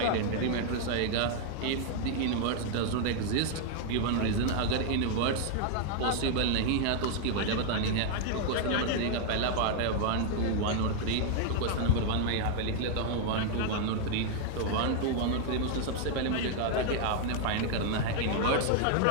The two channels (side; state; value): both; different; correlation 0.00